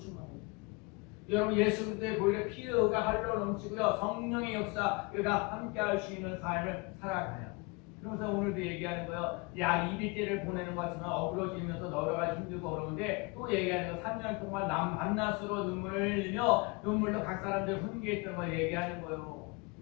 여러분 예수 그리스도의 보혈의 피가 흘러 넘치고요. 성령의 역사가 함께할 수 있는 삶을 살아가요. 그래서 오늘도 얘기하는 거예요. 약 200개를 보내는 것 같지만 어그러지면서 여러 가지 힘들고 어려운데 또 얘기하는 거 3년 동안 남 밤낮으로 눈물을 흘리며 눈물로 각 사람들 훈계했던 걸 얘기하는 거예요.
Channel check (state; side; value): quieter; right; 28.0 dB